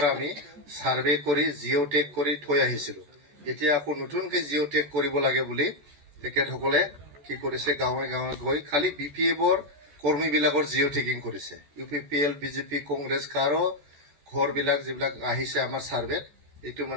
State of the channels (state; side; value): late; left; 14 ms